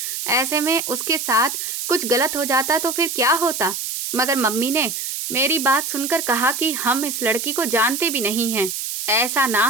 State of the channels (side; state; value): right; noise; hiss, 4 dB below the sound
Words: ऐसे में उसके साथ कुछ गलत हो जाता तो फिर क्या होता। मगर मम्मी ने मेरी बात सुनकर कहा कि हम इस लड़की को जानते भी नहीं हैं। ऐसा ना